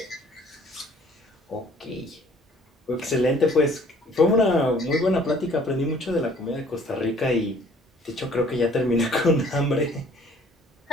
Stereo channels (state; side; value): normal; both; correlation 0.56